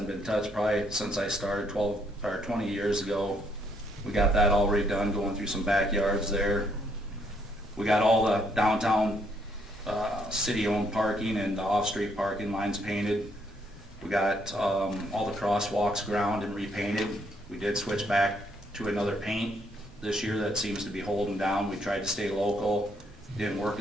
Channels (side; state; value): both; normal; correlation 0.70